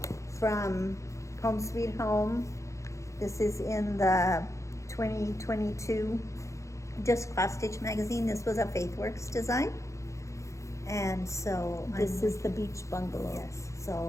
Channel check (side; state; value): right; late; 0.15 ms